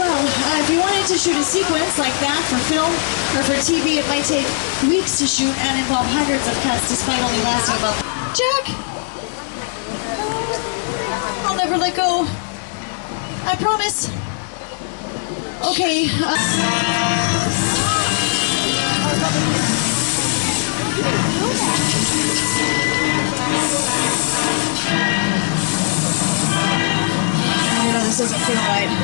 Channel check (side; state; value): right; silent; digital silence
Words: if you wanted to shoot a sequence like that for film or for TV, it might take weeks to shoot and involve hundreds of cuts despite only lasting about... Jack! I'll never let go. I promise. Okay. I know this doesn't feel right.